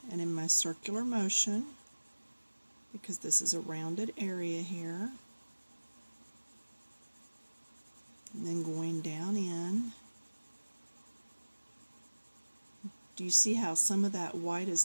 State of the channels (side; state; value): both; inverted; correlation -1.00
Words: and in my circular motion, because this is a rounded area here, and then going down in. Do you see how some of that white is